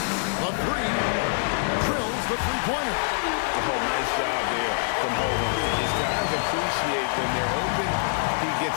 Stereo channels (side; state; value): right; silent; digital silence